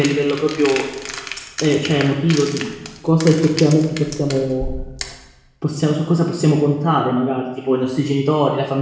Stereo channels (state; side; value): identical; both; correlation 1.00